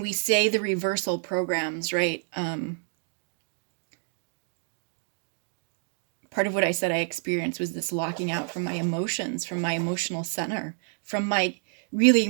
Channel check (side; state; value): left; silent; digital silence